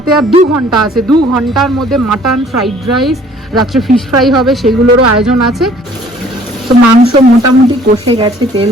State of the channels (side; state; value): both; normal; correlation 0.56